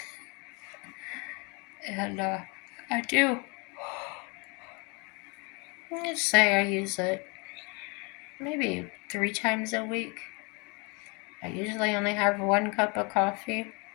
And I do. Let's say I use it maybe 3 times a week. I usually only have 1 cup of coffee.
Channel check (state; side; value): quieter; right; 30.8 dB